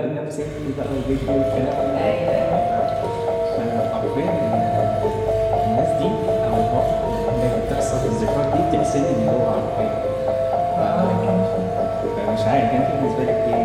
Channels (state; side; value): identical; both; correlation 1.00